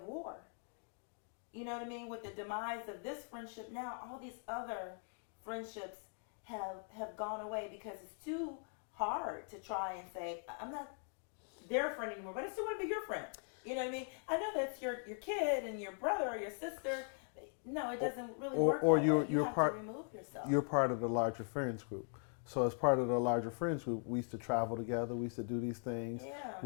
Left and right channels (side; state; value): right; silent; 51 dB below the other